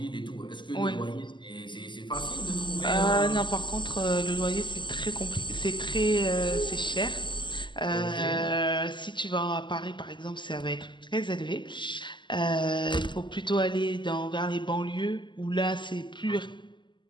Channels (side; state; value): right; late; 0.23 ms